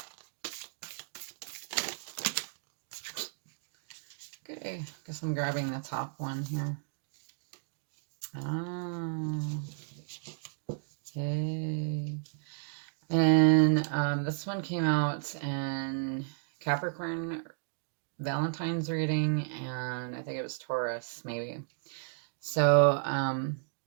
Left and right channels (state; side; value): silent; left; digital silence